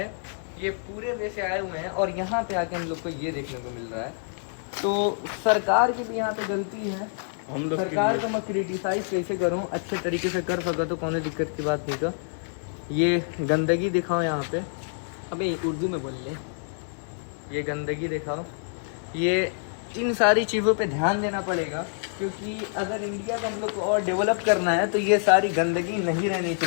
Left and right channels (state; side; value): silent; right; digital silence